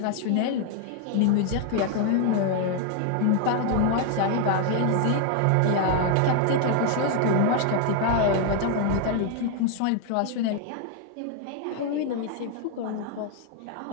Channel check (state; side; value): different; both; correlation 0.00